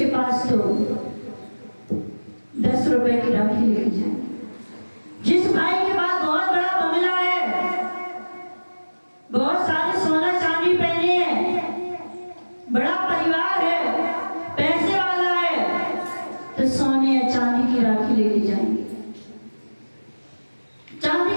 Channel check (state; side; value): inverted; both; correlation -1.00